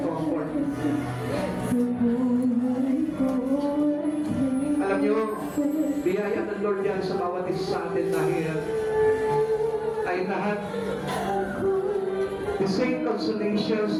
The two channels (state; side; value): identical; both; correlation 1.00